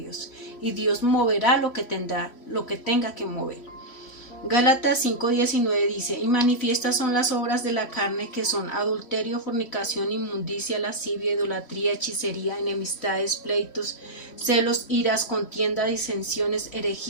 y Dios moverá lo que tenga que mover. Gálatas 5:19 dice, y manifiestas son las obras de la carne, que son adulterio, fornicación, inmundicia, lascivia, idolatría, hechicería, enemistades, pleitos, celos, iras, contienda, disensiones,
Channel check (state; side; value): late; right; 3.1 ms